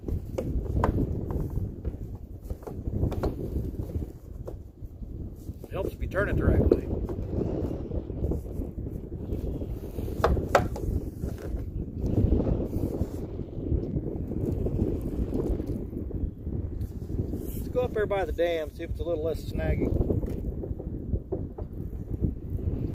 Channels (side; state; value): both; identical; correlation 1.00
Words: It helps if you turn it the right way. Let's go up there by the dam, see if it's a little less snaggy.